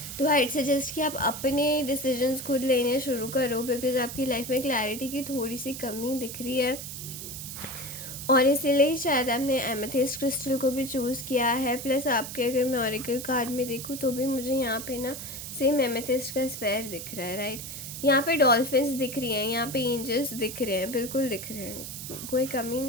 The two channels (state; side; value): noise; right; hiss, 9 dB below the sound